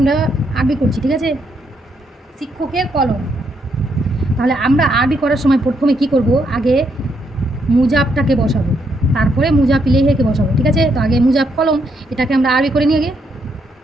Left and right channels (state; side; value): normal; both; correlation 0.76